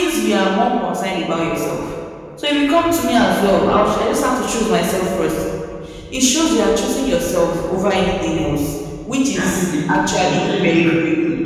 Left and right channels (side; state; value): both; identical; correlation 1.00